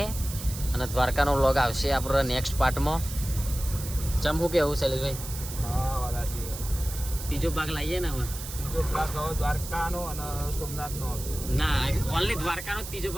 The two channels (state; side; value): noise; right; hiss, 10 dB below the sound